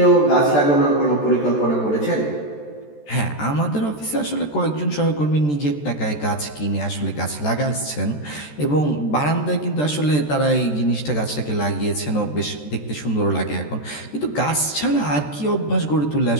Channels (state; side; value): late; right; 14 ms